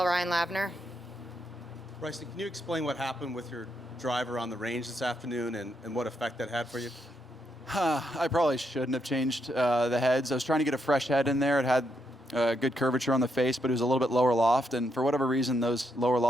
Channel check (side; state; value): both; normal; correlation 0.79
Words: Ryan Lavner. Bryson, can you explain what happened with your driver on the range this afternoon and what effect that had for you? I probably shouldn't have changed the heads. I was trying to get a fresh head in there. It had good curvature on the face, but it was a little bit lower loft, and for whatever reason, those lower